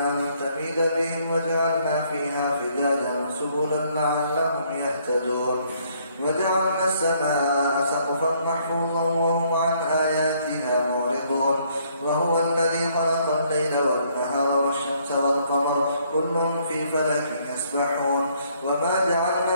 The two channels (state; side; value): inverted; both; correlation -0.66